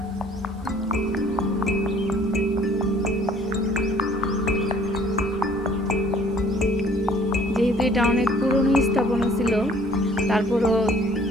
এটা অনেক পুরনো স্থাপনা ছিল, তারপরও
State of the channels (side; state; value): both; normal; correlation 0.56